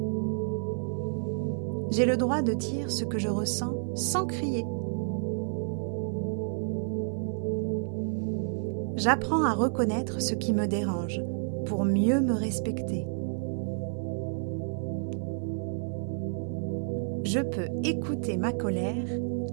J'ai le droit de dire ce que je ressens sans crier. J'apprends à reconnaître ce qui me dérange pour mieux me respecter. Je peux écouter ma colère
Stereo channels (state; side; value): silent; left; 58 dB below the other